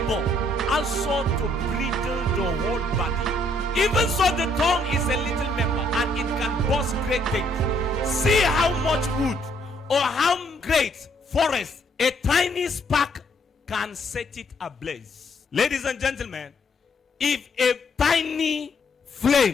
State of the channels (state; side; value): normal; both; correlation 0.68